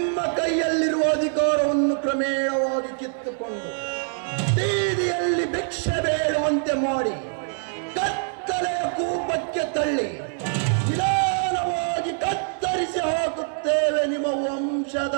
ಕೈಯಲ್ಲಿರುವ ಅಧಿಕಾರವನ್ನು ಕ್ರಮೇಣವಾಗಿ ಕಿತ್ತುಕೊಂಡು ಬೀದಿಯಲ್ಲಿ ಭಿಕ್ಷೆ ಬೇಡುವಂತೆ ಮಾಡಿ ಕತ್ತಲೆಯ ಕೂಪಕ್ಕೆ ತಳ್ಳಿ ನಿಧಾನವಾಗಿ ಕತ್ತರಿಸಿ ಹಾಕುತ್ತೇವೆ ನಿಮ್ಮ ವಂಶದ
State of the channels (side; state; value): left; silent; 62 dB below the other